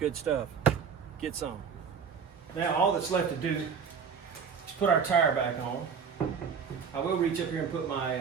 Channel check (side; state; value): left; quieter; 6.5 dB